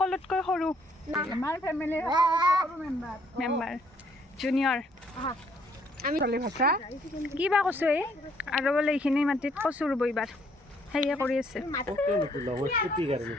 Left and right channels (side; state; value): both; normal; correlation 0.67